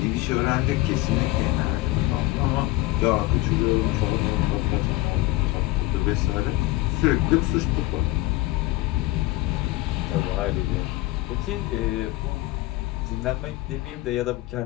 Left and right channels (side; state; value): right; quieter; 18.6 dB